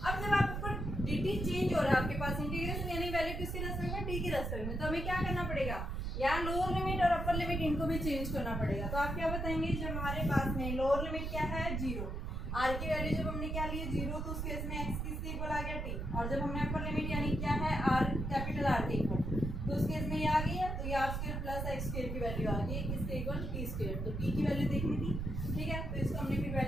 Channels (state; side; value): noise; right; rumble, 3 dB below the sound